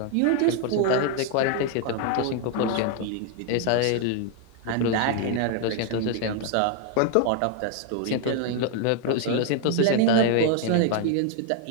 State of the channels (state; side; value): different; both; correlation 0.00